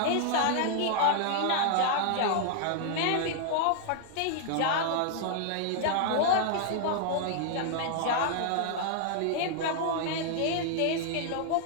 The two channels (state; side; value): different; both; correlation -0.01